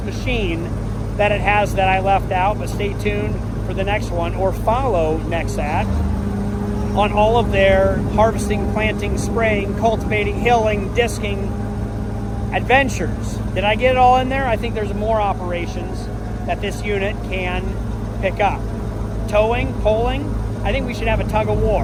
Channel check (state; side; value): identical; both; correlation 1.00